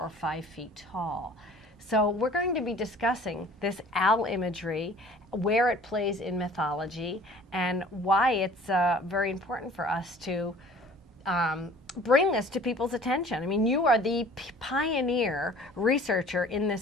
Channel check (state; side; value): normal; both; correlation 0.49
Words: 5 feet tall. So we're going to be discussing this owl imagery, where it plays in mythology, and why it's very important for us to bring this to people's attention. I mean, you are the pioneer researcher in